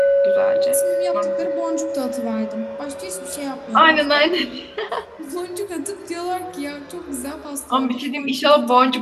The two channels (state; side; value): identical; both; correlation 1.00